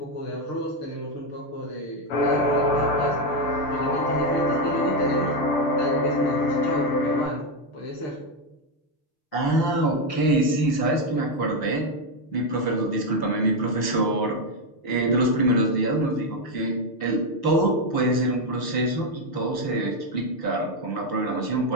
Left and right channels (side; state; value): right; late; 5.9 ms